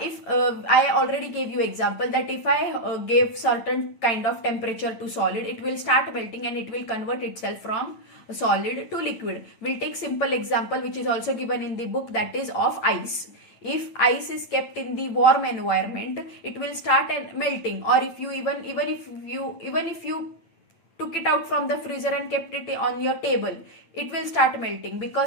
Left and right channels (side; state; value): right; late; 9.0 ms